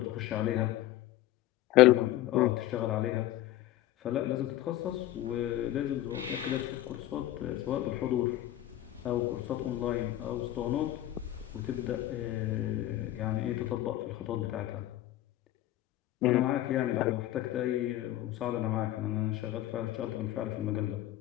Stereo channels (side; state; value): right; quieter; 14.4 dB